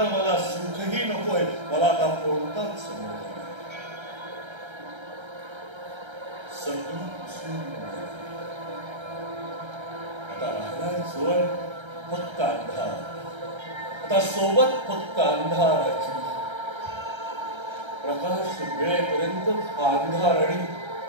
मला सुखही नकोय. मला आता कोणताच आता राहिलाय जोड फक्त अंधार. आता सोबत फक्त अंधाराची. प्रकाश मिळेपर्यंत अंधार आणि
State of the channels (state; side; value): late; left; 1.3 ms